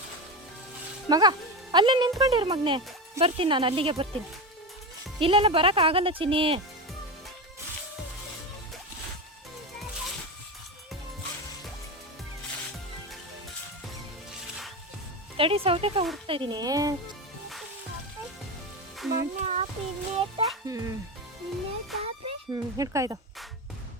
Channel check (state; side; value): normal; both; correlation 0.19